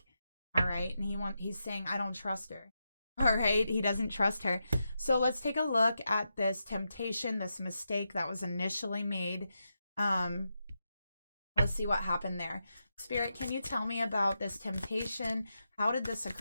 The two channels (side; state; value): both; inverted; correlation -0.86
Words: All right, and he's saying, I don't trust her. All right, he doesn't trust her. So let's take a look at this temptation, this mistake that was initially made. Let's see what happened there. Spirit, can you tell me about this temptation? How did this